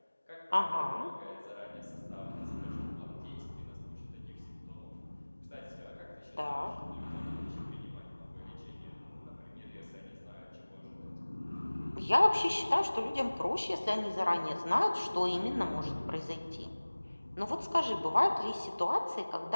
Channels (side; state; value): both; inverted; correlation -1.00